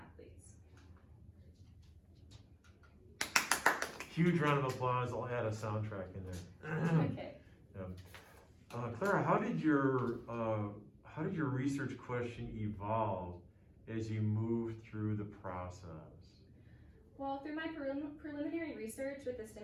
Huge round of applause. I'll add a soundtrack in there. Okay. Yeah. Clara, how did your research question evolve as you moved through the process? Well, through my preliminary research with the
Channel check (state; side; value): identical; both; correlation 1.00